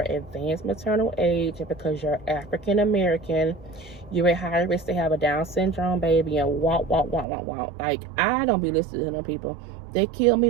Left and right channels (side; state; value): left; drops out; at 7.2 s